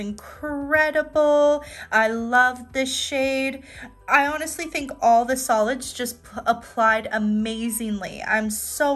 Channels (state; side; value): identical; both; correlation 1.00